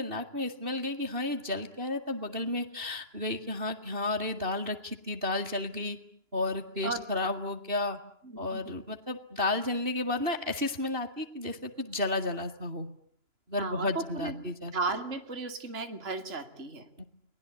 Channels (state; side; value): late; left; 2.9 ms